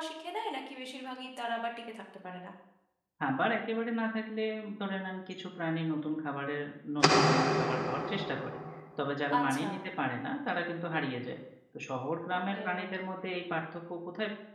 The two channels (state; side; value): identical; both; correlation 1.00